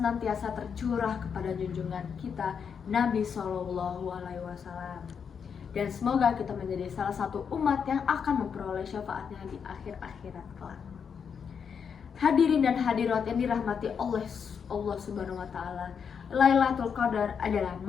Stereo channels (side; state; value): right; quieter; 6.8 dB